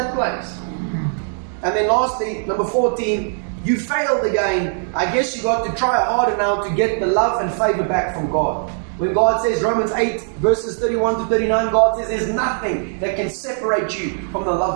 place. And then lastly, number 14, you failed again. I guess you got to try harder now to get the love and favor back from God. When God says, Romans 8 verses 31 to 39, God says there's nothing that can separate you from the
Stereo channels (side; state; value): left; silent; 66 dB below the other